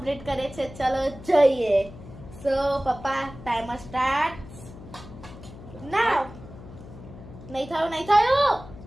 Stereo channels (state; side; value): noise; left; hum, 16 dB below the sound